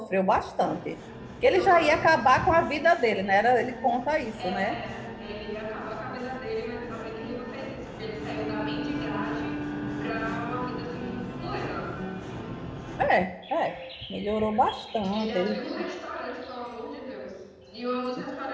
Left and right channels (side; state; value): both; identical; correlation 1.00